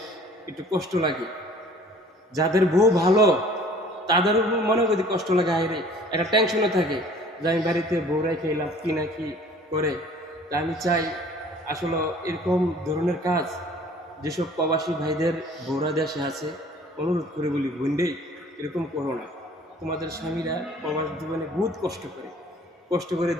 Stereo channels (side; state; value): both; normal; correlation 0.51